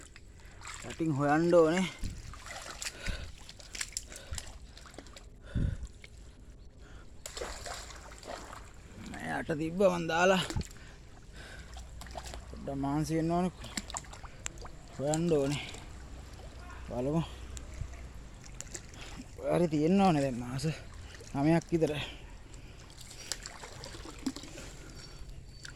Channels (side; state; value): both; identical; correlation 1.00